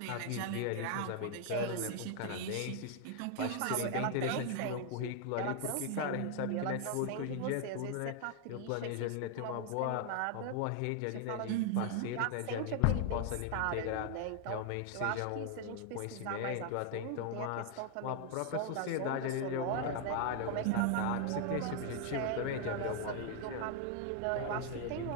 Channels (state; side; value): different; both; correlation 0.00